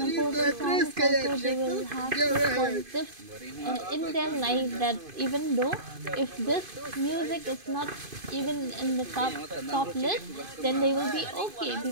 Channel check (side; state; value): left; late; 2.5 ms